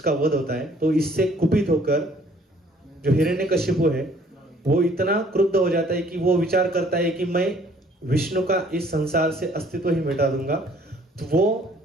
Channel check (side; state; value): both; normal; correlation 0.59